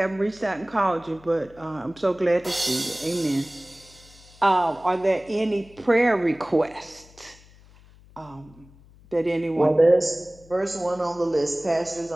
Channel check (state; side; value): noise; left; hum, 25 dB below the sound